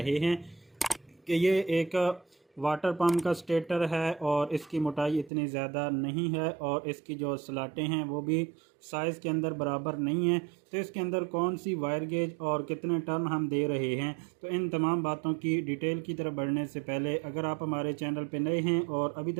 हैं कि ये एक वाटर पंप का स्टेटर है और इसकी मोटाई इतनी ज़्यादा नहीं है और इसकी जो स्लाटें हैं वो भी साइज़ के अंदर बराबर नहीं है। तो इसके अंदर कौन सी वायर गेज और कितने टर्न हम दे रहे हैं, तो इन तमाम बातों की डिटेल की तरफ बढ़ने से पहले अगर आप हमारे चैनल पर नए हैं और अभी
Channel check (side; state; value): left; drops out; at 5.3 s